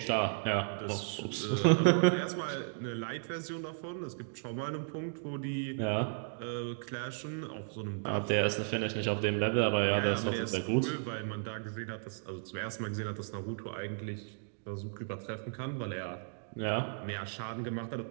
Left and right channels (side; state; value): left; silent; digital silence